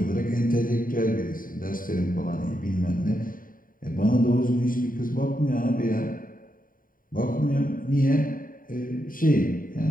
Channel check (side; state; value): right; late; 0.40 ms